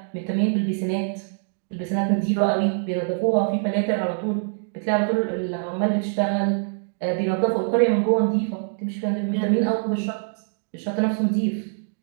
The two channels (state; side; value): silent; left; 63 dB below the other